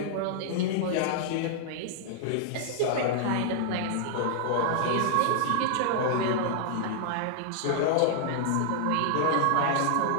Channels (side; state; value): both; different; correlation -0.01